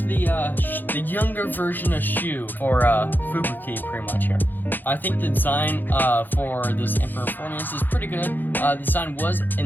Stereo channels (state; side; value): late; right; 0.089 ms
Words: younger version of Shu for Fubuki, pretty much here. I think the design for this Emperor Faenir is pretty good. The design was